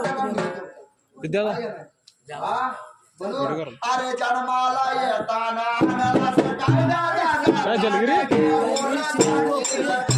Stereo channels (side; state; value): both; identical; correlation 1.00